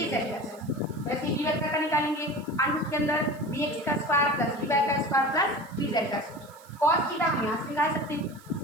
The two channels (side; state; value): right; noise; hiss, 25 dB below the sound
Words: का स्क्वायर। वैसे बी वेक्टर का निकालेंगे, अनुरूप के अंदर bx का स्क्वायर प्लस by का स्क्वायर प्लस bz का स्क्वायर। cos थीटा हम यहाँ से निकाल सकते हैं।